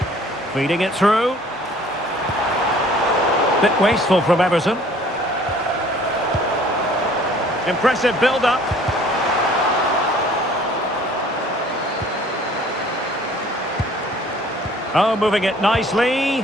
Feeding it through. Bit wasteful from Everton. Impressive build-up. Oh, moving it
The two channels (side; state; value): both; normal; correlation 0.54